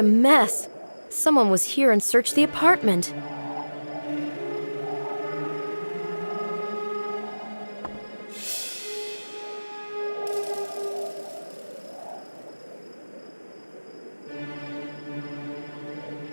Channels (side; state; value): both; inverted; correlation -1.00